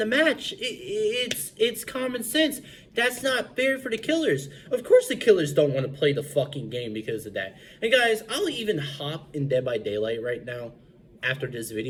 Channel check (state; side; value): identical; both; correlation 1.00